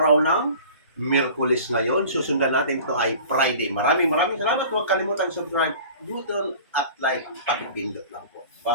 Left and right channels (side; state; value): both; inverted; correlation -0.42